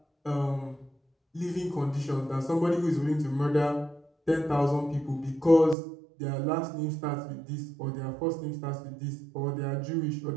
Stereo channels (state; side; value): drops out; left; at 5.8 s